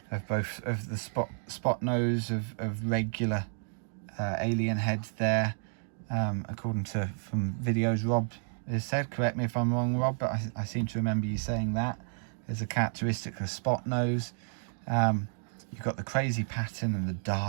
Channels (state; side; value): silent; left; digital silence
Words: both of the spot nose of regular alien heads there, according to from videos Rob has said. Correct me if I'm wrong, Rob, but I seem to remember you saying that as a characteristic of spot nose. You've got the crazy pattern and the